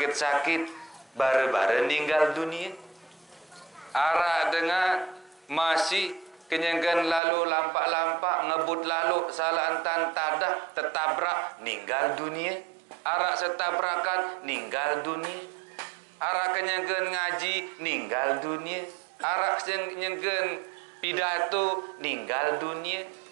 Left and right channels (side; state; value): left; drops out; at 7.2 s